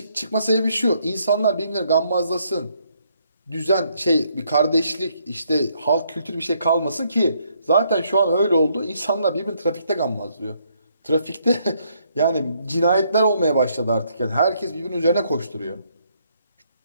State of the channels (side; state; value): both; inverted; correlation -0.72